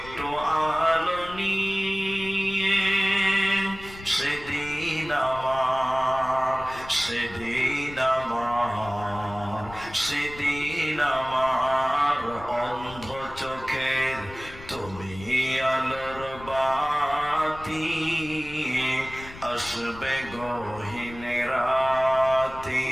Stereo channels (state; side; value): noise; left; rumble, 16 dB below the sound